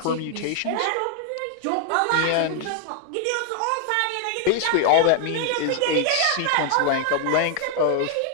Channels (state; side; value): different; both; correlation 0.00